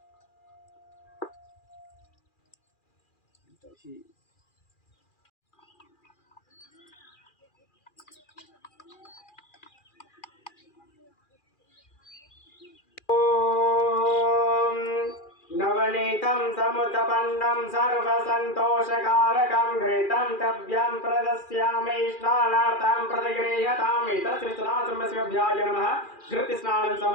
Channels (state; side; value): late; right; 2.4 ms